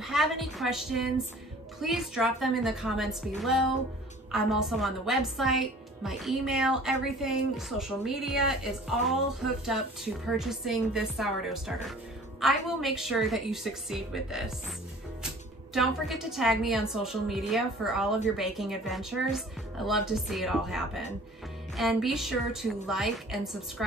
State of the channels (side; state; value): both; normal; correlation 0.48